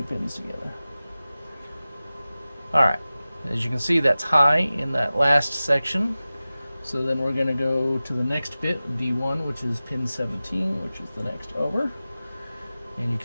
pins together. All right, as you can see, that's high in that last section. So then we're going to go to the next bit, D1, which is pin 17, which is the next over. And you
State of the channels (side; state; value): both; inverted; correlation -0.96